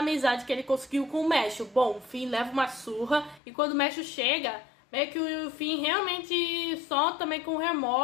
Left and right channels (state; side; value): drops out; right; at 3.4 s